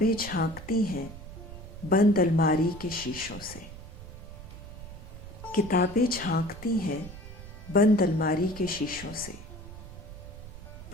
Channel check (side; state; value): right; noise; rumble, 13 dB below the sound